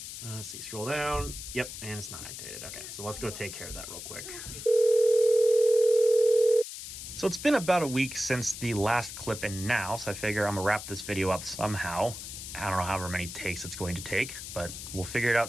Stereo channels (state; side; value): noise; left; hiss, 10 dB below the sound